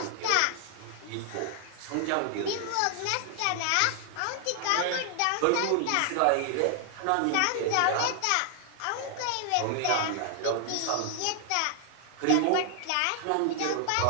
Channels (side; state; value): both; different; correlation 0.00